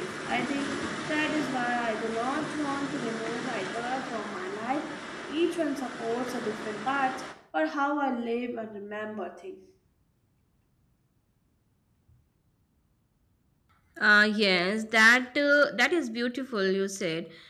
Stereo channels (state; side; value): identical; both; correlation 1.00